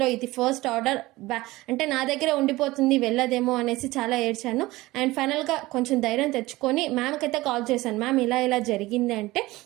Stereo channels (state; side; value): quieter; left; 19.2 dB